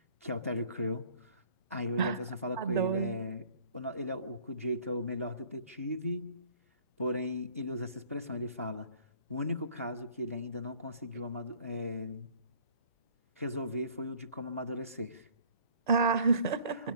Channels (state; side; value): inverted; both; correlation -0.55